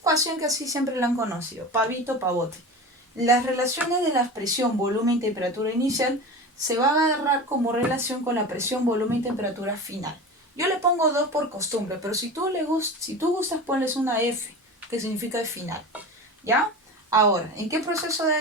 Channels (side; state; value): both; normal; correlation 0.31